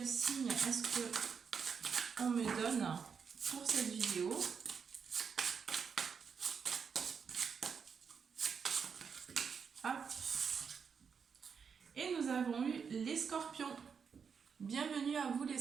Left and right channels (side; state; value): left; quieter; 6.3 dB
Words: signe est-ce qu'on me donne pour cette vidéo. Hop. Et nous avons eu les scorpions. Bienvenue à vous les